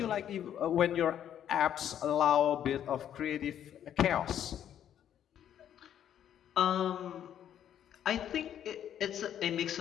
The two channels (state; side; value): quieter; right; 10.1 dB